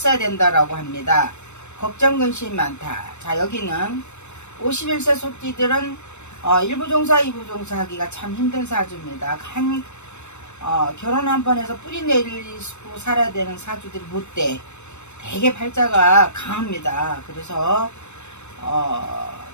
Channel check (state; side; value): late; right; 0.82 ms